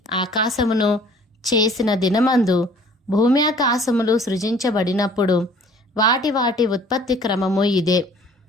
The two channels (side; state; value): both; normal; correlation 0.53